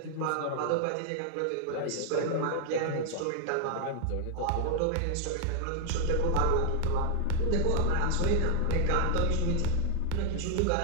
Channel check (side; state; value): both; different; correlation 0.00